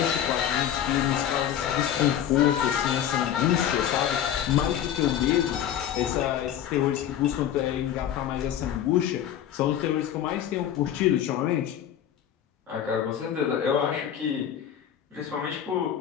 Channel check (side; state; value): right; quieter; 10.2 dB